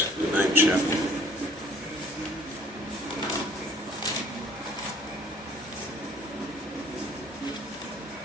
the 9th chapter.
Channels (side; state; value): both; normal; correlation 0.57